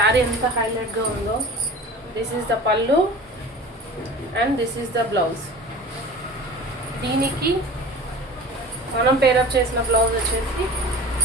ఎంత హైలైట్గా ఉందో. This is the pallu and this is the blouse. దీనికి మనం పేరప్ చేసిన బ్లౌజ్ వచ్చేసి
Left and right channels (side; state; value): both; normal; correlation 0.39